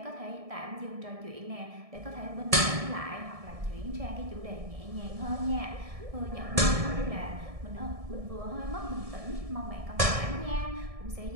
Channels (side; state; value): left; late; 1.6 ms